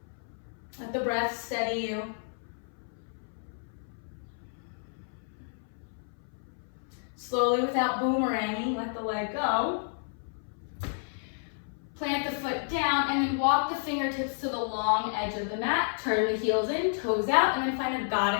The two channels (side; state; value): right; silent; 57 dB below the other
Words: Let the breath steady you. Slowly, without boomeranging, let the leg go. Plant the foot down and then walk the fingertips to the long edge of the mat. Turn the heels in, toes out, and then find a